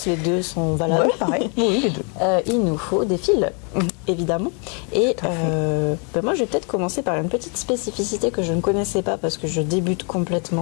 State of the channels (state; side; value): quieter; right; 37.5 dB